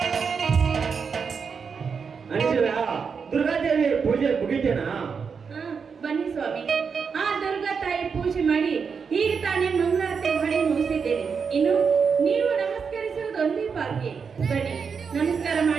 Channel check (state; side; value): quieter; left; 5.9 dB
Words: ದುರ್ಗಾದೇವಿ ಪೂಜೆ ಮುಗಿತೇನಾ? ಬನ್ನಿ ಸ್ವಾಮಿ, ಆ ದುರ್ಗಾ ತಾಯಿ ಪೂಜೆ ಮಾಡಿ ಈಗ ತಾನೇ ಮಂಗಳಾರತಿ ಮಾಡಿ ಮುಗಿಸಿದ್ದೇನೆ. ಇನ್ನು ನೀವು ನಮಸ್ಕರಿಸುವುದು ಒಂದೇ ಬಾಕಿ. ಬನ್ನಿ, ನಮಸ್ಕಾರ